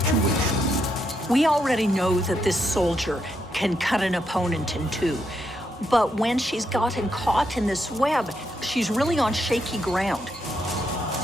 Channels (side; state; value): both; normal; correlation 0.79